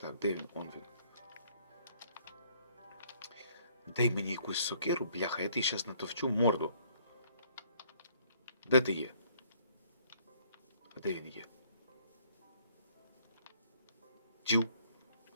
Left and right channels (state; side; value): inverted; both; correlation -0.63